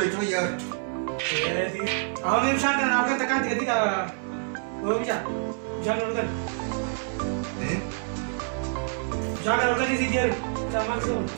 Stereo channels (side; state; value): left; silent; 60 dB below the other